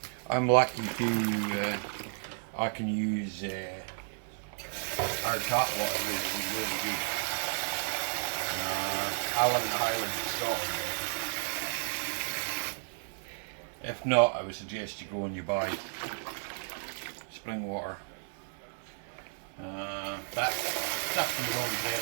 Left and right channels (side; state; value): left; silent; 56 dB below the other